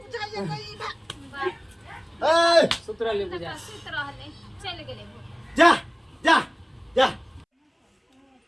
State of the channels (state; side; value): identical; both; correlation 1.00